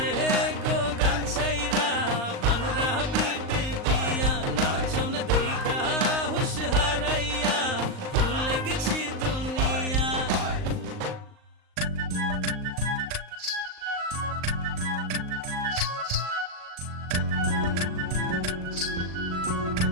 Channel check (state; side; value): late; left; 38 ms